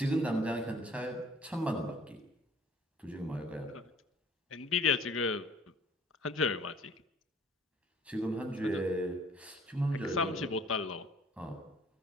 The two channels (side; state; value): both; normal; correlation 0.53